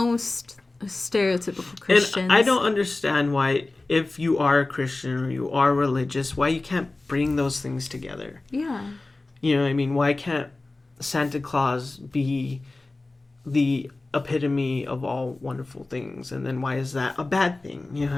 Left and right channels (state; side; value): quieter; right; 3.1 dB